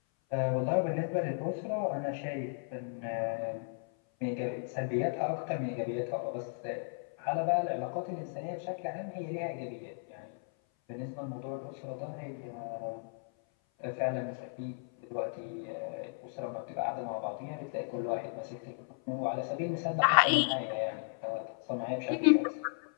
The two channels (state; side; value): silent; right; 54 dB below the other